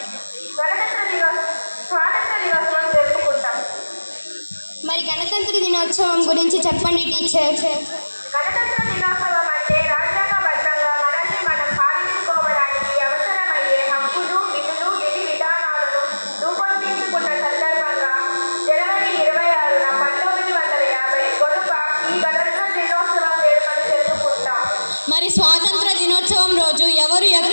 స్వాతంత్ర దినోత్సవం జరుపుకుంటాం. మరి గణతంత్ర దినోత్సవం గురించి చెప్పండి టీచర్. గణతంత్ర దినోత్సవం అంటే రాజ్యాంగబద్ధంగా మనల్ని మనం పాలించుకోవడానికి అవసరమయ్యే హక్కులు, విధులు, విధి విధానాలను రూపొందించుకున్న సందర్భంగా జనవరి 26న 1950 గొనుక ఈ గణతంత్ర దినోత్సవం వేడుకలు జరుపుకుంటాం. మరి స్వాతంత్ర దినోత్సవం రోజు ఎవరు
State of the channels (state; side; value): inverted; both; correlation -1.00